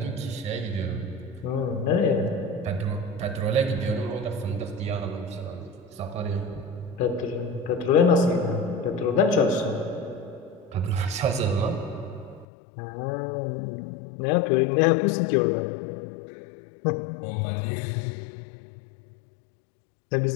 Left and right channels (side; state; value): right; drops out; at 12.5 s